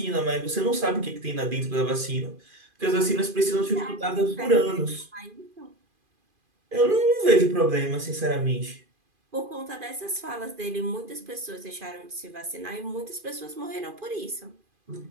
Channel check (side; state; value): left; late; 2.5 ms